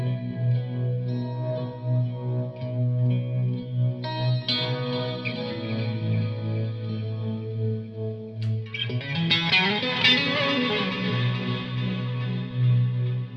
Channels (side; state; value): both; identical; correlation 1.00